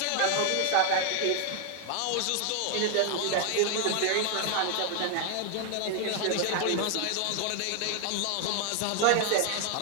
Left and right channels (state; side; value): different; both; correlation 0.00